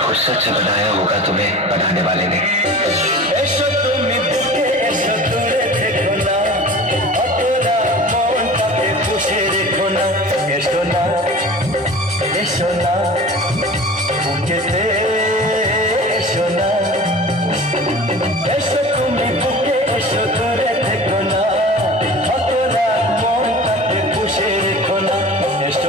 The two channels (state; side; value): normal; both; correlation 0.39